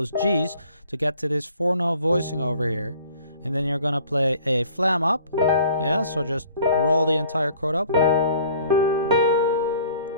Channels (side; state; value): both; inverted; correlation -0.54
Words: G's to get to this 4-note voicing over here. And then you're going to play a flam up. Yeah, so just roll the entire chord up.